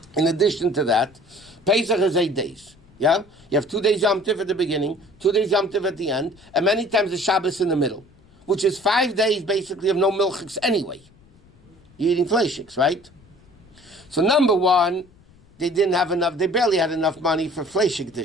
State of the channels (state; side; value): noise; left; rumble, 28 dB below the sound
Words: in addition to that, Pesach is 8 days. Yeah? You have 2 days Yom Tov at the beginning, 2 days Yom Tov at the end, and many times the Shabbos in the middle, which is 5 days basically of no milchiks anyway. You're eating fleishiks, right? So number one, they barely had enough money for fleishik